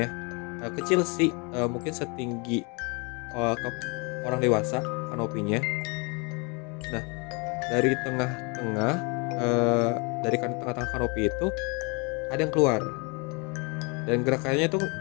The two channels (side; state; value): right; quieter; 31.0 dB